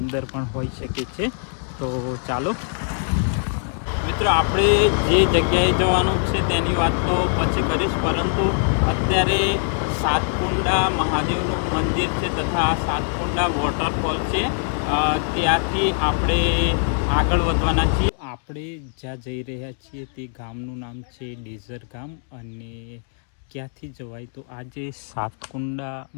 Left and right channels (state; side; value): silent; right; digital silence